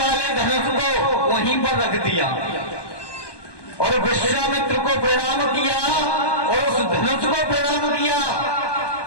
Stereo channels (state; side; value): late; right; 1.2 ms